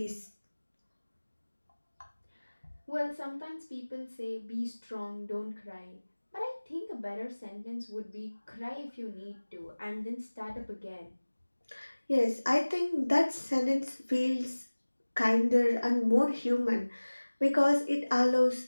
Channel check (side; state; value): both; inverted; correlation -1.00